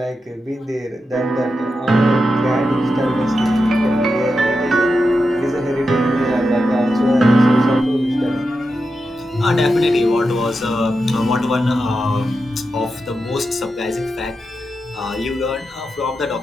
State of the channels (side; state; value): both; normal; correlation 0.89